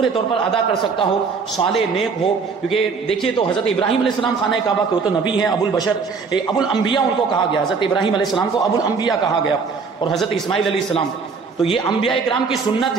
طور پر ادا کر سکتا ہو، صالح نیک ہو. کیونکہ دیکھیے تو حضرت ابراہیم علیہ السلام خانہ کعبہ کے وہ تو نبی ہیں، ابو البشر، ابو الانبیاء ان کو کہا گیا. حضرت ابراہیم علیہ السلام کو ابو الانبیاء کہا گیا اور حضرت اسماعیل علیہ السلام. تو یہ انبیاء کرام کی سنت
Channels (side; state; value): left; quieter; 5.0 dB